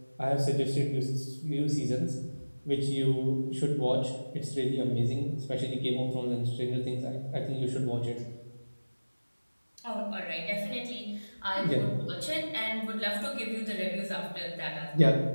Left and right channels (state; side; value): inverted; both; correlation -1.00